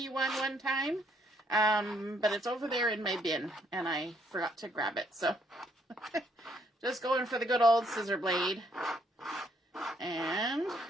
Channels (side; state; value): both; normal; correlation 0.70